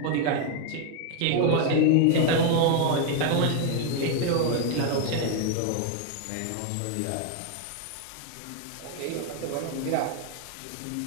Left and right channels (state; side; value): different; both; correlation 0.01